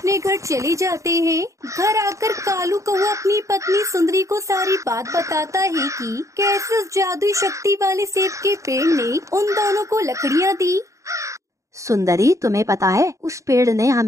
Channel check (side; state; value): left; late; 0.15 ms